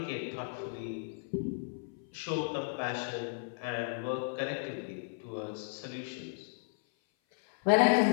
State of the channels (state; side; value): silent; right; 55 dB below the other